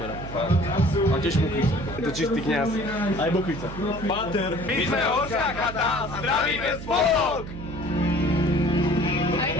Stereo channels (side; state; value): right; noise; hum, 10 dB below the sound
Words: A tiež Bukvica. Je to čistý kňaz. Aj Bukvica. Pater. My sme Horská chata a zdravíme spolok! A